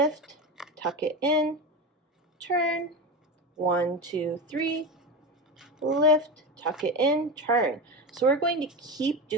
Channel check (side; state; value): both; normal; correlation 0.21